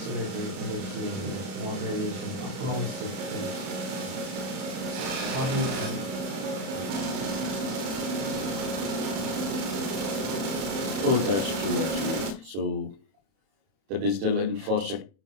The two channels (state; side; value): late; left; 31 ms